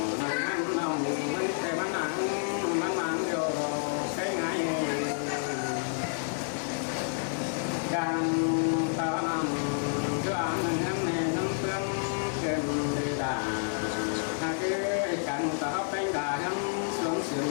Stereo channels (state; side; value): silent; right; 58 dB below the other